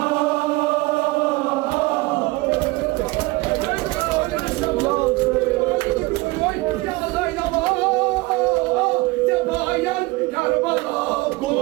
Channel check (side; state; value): left; quieter; 22.5 dB